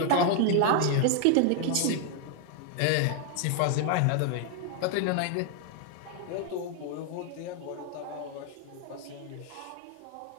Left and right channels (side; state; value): both; different; correlation 0.00